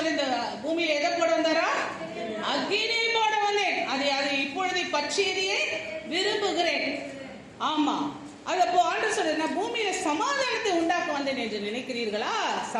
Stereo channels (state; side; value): identical; both; correlation 1.00